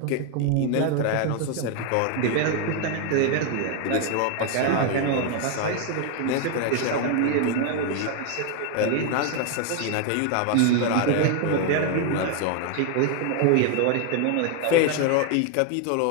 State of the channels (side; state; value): both; different; correlation 0.01